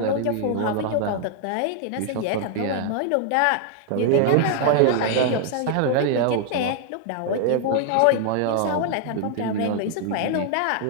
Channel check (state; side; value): different; both; correlation 0.00